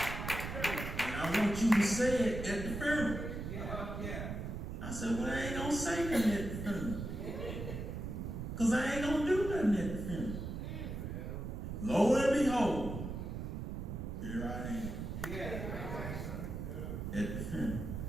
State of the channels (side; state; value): right; noise; rumble, 5 dB below the sound